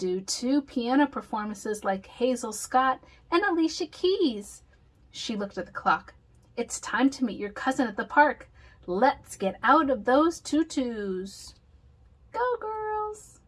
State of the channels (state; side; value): identical; both; correlation 1.00